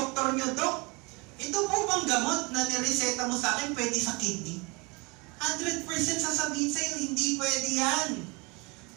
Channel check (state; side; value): quieter; left; 27.8 dB